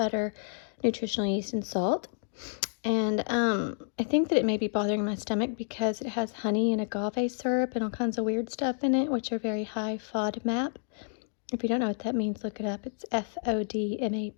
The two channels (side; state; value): right; silent; digital silence